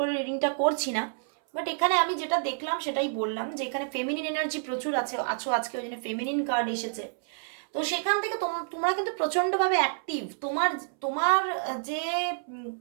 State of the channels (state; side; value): silent; left; 59 dB below the other